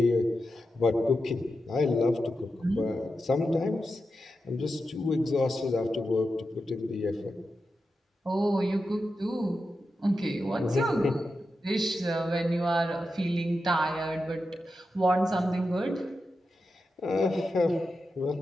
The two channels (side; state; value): both; normal; correlation 0.89